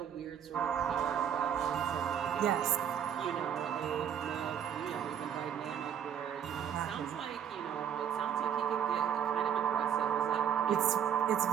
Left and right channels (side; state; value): left; quieter; 8.8 dB